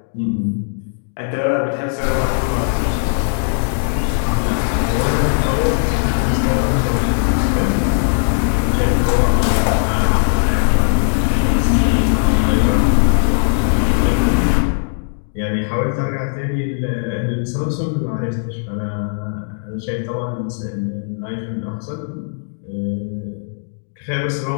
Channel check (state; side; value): silent; right; digital silence